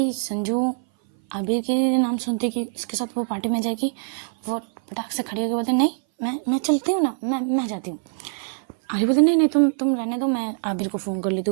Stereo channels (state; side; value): silent; left; 59 dB below the other